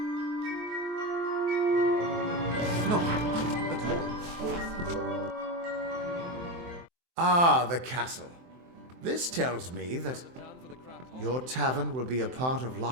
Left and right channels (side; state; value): left; late; 23 ms